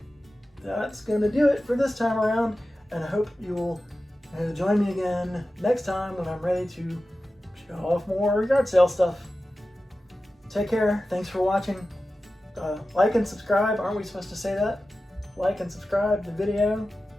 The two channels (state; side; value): normal; both; correlation 0.94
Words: that's going to do it for this time around, and I hope you'll join me again next time when I'm ready to show off more yard sale stuff. Take care. Thanks for watching. Like and subscribe. Aren't we supposed to say that? Like and subscribe to the video.